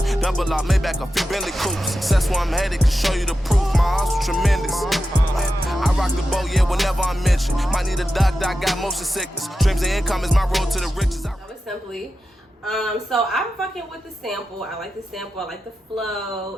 Double up, Maybach, a few Bentley coupes. Success where I'm headed can show you the proof. My hustle tremendous. I rock the boat, yeah, whenever I'm mentioned. Might need a doctor, I got motion sickness. Dreams and income is my road to the riches. That was Simply. So I'm fucking with the sample. I like the sample. I like the flow.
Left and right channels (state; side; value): normal; both; correlation 0.90